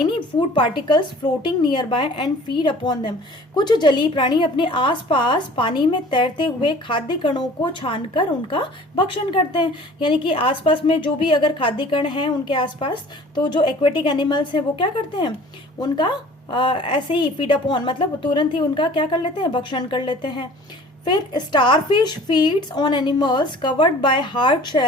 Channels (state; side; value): normal; both; correlation 0.48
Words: food particles floating near by and feed upon them. कुछ जलीय प्राणी अपने आसपास पानी में तैरते हुए खाद्य कणों को छानकर उनका भक्षण करते हैं, यानी कि आसपास में जो भी अगर खाद्य कण हैं उनके आसपास, तो जो एक्वेटिक एनिमल्स हैं वो क्या करते हैं, उनका ऐसे ही फीड अपॉन, मतलब तुरंत ही उनका क्या कर लेते हैं, भक्षण कर लेते हैं। फिर starfish feeds on animals covered by hard